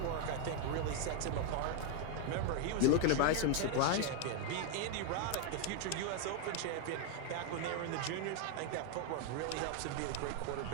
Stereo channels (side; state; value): both; different; correlation 0.00